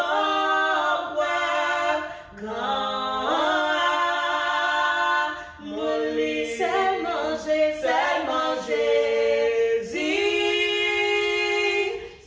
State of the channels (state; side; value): identical; both; correlation 1.00